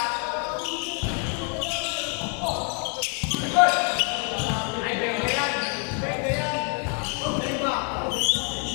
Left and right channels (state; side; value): quieter; right; 39.2 dB